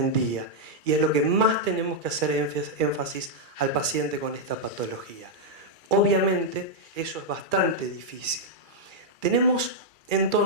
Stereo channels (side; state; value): left; late; 2.3 ms